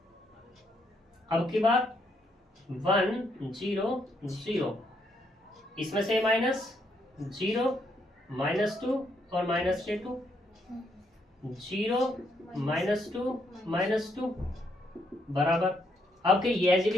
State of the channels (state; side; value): normal; both; correlation 0.75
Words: अब की बात 1 0 0 इसमें से माइनस 0 -2 और -2 0 -2 बराबर। अब के ये एज इट